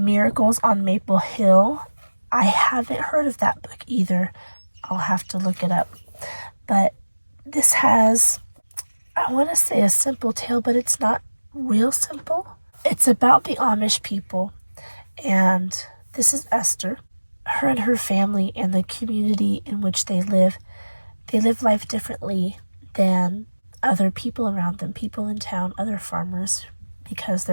on Maple Hill. I haven't heard of that book either. I'll have to look it up. But this has, I want to say a simple tale, but it's not real simple. It's about the Amish people, and this is Esther. Her and her family and the community in which they live life differently than other people around them, people in town, other farmers, because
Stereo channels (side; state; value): both; inverted; correlation -1.00